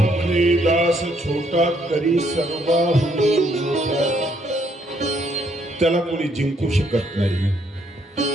दास छोटा तरी सर्वाहून मोठा, त्याला कोणी जिंकू शकत नाही.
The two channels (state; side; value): normal; both; correlation 0.70